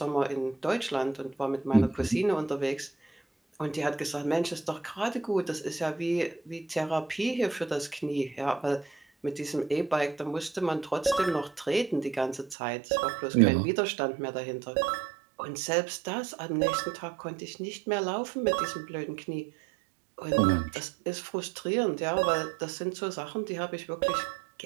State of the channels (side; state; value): left; drops out; at 12.6 s